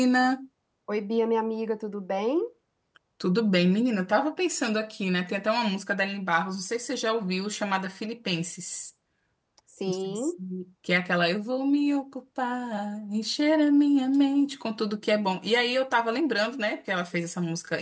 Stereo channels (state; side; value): identical; both; correlation 1.00